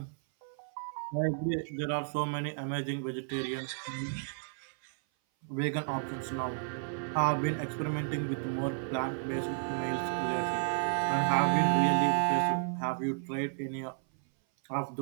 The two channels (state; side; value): silent; left; 56 dB below the other